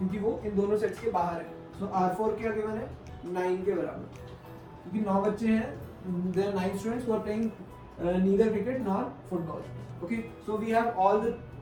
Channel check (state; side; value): identical; both; correlation 1.00